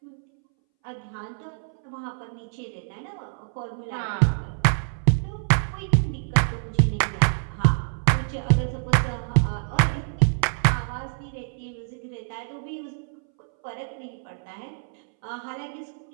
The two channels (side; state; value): left; silent; 61 dB below the other